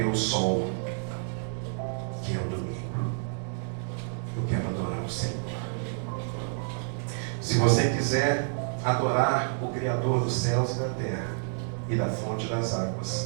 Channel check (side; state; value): left; silent; digital silence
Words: sol, que é o domingo. Eu quero adorar o Senhor. Se você quiser adorar o Criador dos céus e da terra e da fonte das